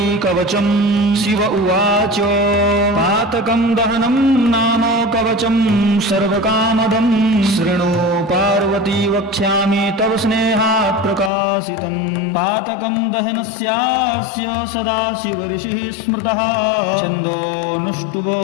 कवचं शिव उवाच पातकं दहनं नाम कवचं सर्वकामदं शृणु पार्वती वक्ष्यामि तव स्नेहात् प्रकाशितं पातकं दहनस्यास्य सदाशिव ऋषिः स्मृतः छन्दोऽनुष्टुभो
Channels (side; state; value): right; drops out; at 11.3 s